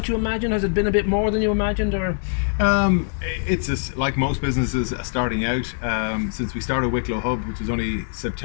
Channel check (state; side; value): silent; right; 59 dB below the other